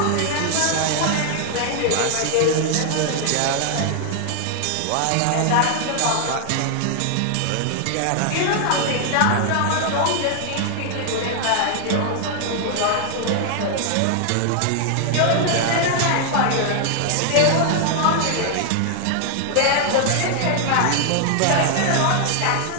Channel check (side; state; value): both; different; correlation 0.00